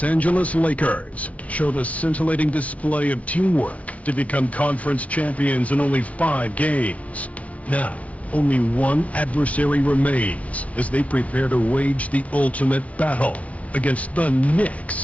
Angeles Lakers showed a scintillating display of teamwork to become conference champions in only 5 games. Now, only one adversary remains as they prepare to wage the ultimate battle against the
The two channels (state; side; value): late; right; 0.066 ms